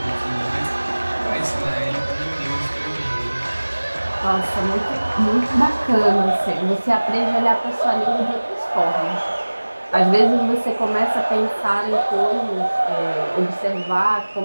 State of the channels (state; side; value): inverted; both; correlation -1.00